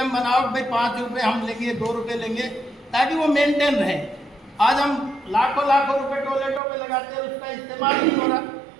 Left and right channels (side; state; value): left; drops out; at 6.6 s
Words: बनाओ, भाई 5 रुपये हम लेंगे, 2 रुपये लेंगे, ताकि वो मेंटेन रहे। आज हम लाखों रुपए टॉयलेटों पे लगाते हैं, उसका इस्तेमाल नहीं हो रहा।